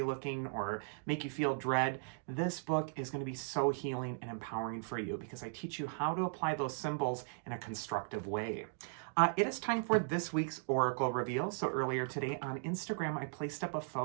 looking or make you feel dread, this book is going to be so healing and empowering for you because I teach you how to apply those symbols in a constructive way. It is time for this week's Oracle reveal. So earlier today on Instagram, I placed up a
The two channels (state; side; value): silent; left; digital silence